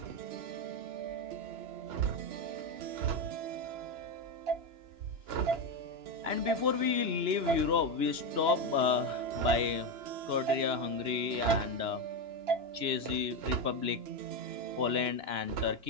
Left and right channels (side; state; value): left; late; 2.9 ms